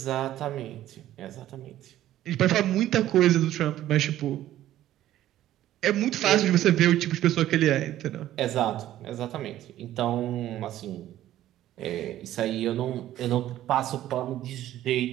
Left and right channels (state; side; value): quieter; left; 13.3 dB